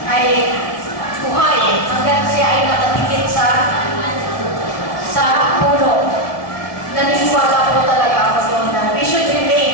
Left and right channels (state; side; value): late; right; 1.9 ms